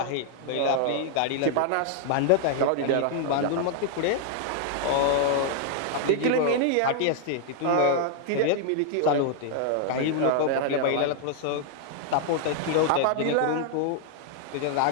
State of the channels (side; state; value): both; different; correlation 0.00